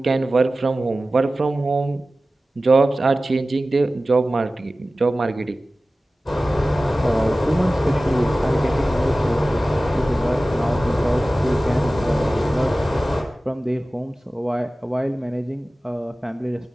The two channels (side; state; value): both; normal; correlation 0.96